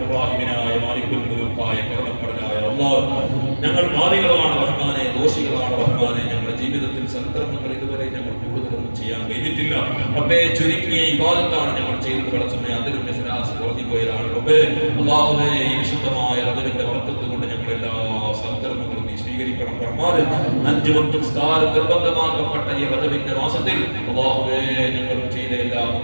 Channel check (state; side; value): inverted; both; correlation -1.00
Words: റഹ്മാനായ മാലിക്കുൽ മുൽക്കായ കരുണക്കടലായ അല്ലാഹ്, ഞങ്ങൾ പാപികളാണ് റഹ്മാനെ, ദോഷികളാണ് റഹ്മാനെ. ഞങ്ങളുടെ ജീവിതത്തിൽ സൽക്കർമ്മങ്ങൾ ഇതുവരെ ഞങ്ങൾ കൂടുതലൊന്നും ചെയ്യാൻ കഴിഞ്ഞിട്ടില്ല റബ്ബേ. ചുരുങ്ങിയ ഇബാദത്താണ് ഞങ്ങൾ ചെയ്തത്. പടച്ചവനെ, അതിലും ഇഖ്ലാസ് കുറഞ്ഞുപോയതാണ് റബ്ബേ. അല്ലാഹുവേ, ഈ വിശുദ്ധമായ റജബിന്റെ ബർക്കത്ത് കൊണ്ട് ഞങ്ങൾ എല്ലാ സൽക്കർമ്മങ്ങളും നീ സ്വീകരിക്കണം റഹ്മാനെ. 5 വക്ത് നിസ്കാരം നിർബന്ധമാക്കപ്പെട്ട ഈ റജബിന്റെ മാസത്തിൽ അല്ലാഹുവേ, ഞങ്ങൾ ചെയ്ത എല്ലാ